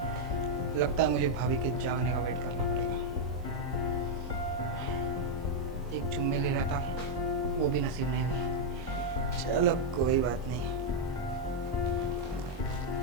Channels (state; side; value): normal; both; correlation -0.02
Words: लगता है मुझे भाभी के जागने का वेट करना पड़ेगा। एक चुम्मी ले रहा था, वो भी नसीब नहीं हुई। चलो कोई बात नहीं।